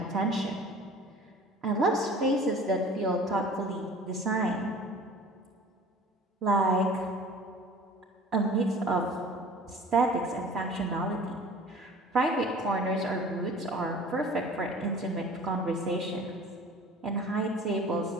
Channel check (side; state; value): both; normal; correlation 0.45